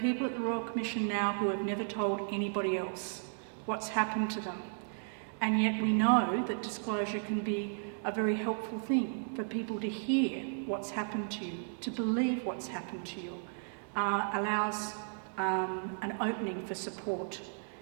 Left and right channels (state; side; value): silent; left; digital silence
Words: at the Royal Commission now who have never told anybody else what's happened to them. And yet we know that disclosure can be a very helpful thing for people to hear what's happened to you, to believe what's happened to you, allows an opening for support